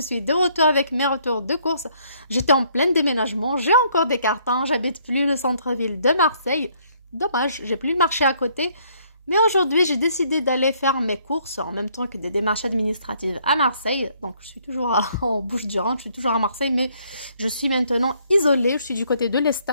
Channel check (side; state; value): both; inverted; correlation -0.66